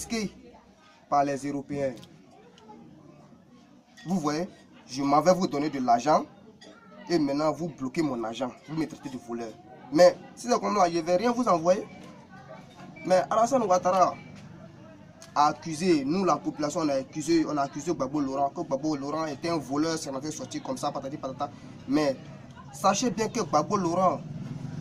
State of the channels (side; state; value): both; identical; correlation 1.00